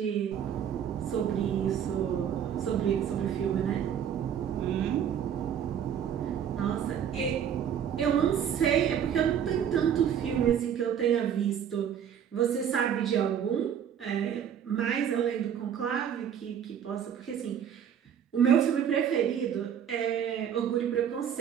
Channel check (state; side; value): quieter; left; 8.8 dB